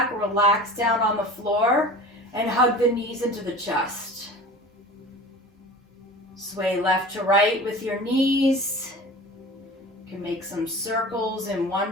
relax down on the floor and hug the knees into the chest. Sway left to right with your knees. You can make some circles in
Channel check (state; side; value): normal; both; correlation 0.38